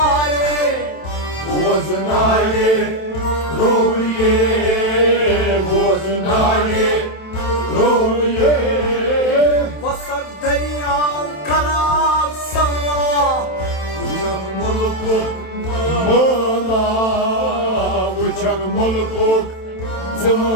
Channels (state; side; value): late; right; 27 ms